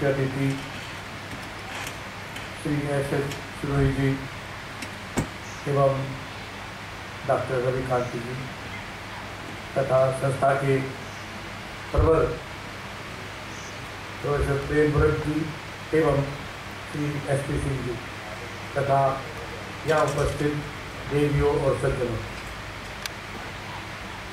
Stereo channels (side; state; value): both; identical; correlation 1.00